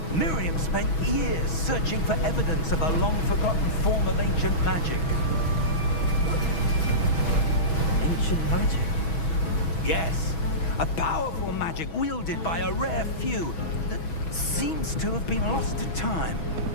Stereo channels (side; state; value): right; late; 6.2 ms